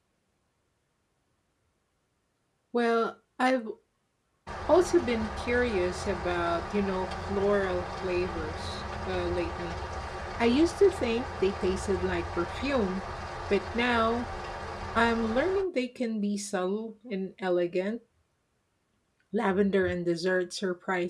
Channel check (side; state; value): both; identical; correlation 1.00